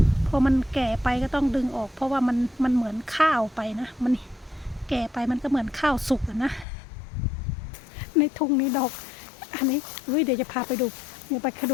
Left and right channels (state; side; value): drops out; right; at 6.7 s